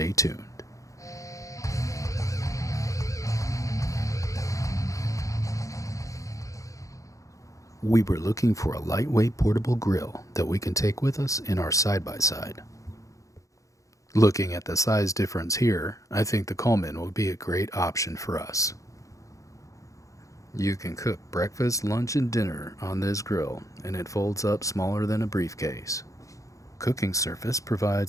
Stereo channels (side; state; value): right; late; 0.16 ms